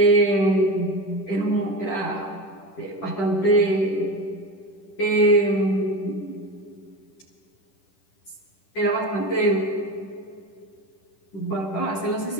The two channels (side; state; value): right; late; 10 ms